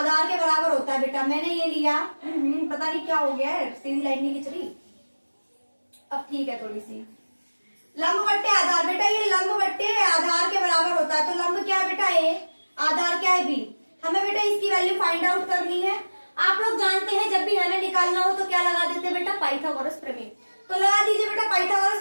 के बराबर होता है। बेटा मैंने ये लिया, पता नहीं क्या हो गया है, सीधी लाइन नहीं खिंच रही। अब ठीक है थोड़ी सी। लंब बट्टे आधार, बेटा ये लंब बट्टे आधार के बराबर होता है। तो लंब क्या है बेटा? a, आधार क्या है b। हमें बेटा इसकी वैल्यू फाइंड आउट करनी है। आप लोग जानते हैं जब भी हमें निकालना हो तो क्या लगा देते हैं बेटा? पाइथागोरस प्रमेय। तो लगा दीजिए बेटा, पाइथागोरस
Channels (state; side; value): inverted; both; correlation -1.00